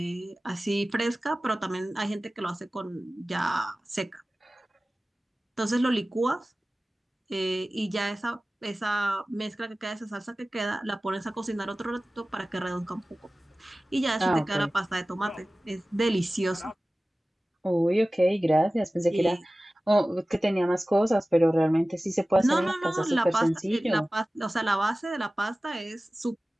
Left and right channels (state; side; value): normal; both; correlation 0.97